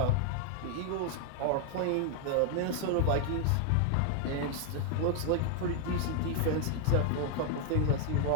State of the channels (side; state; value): both; different; correlation 0.00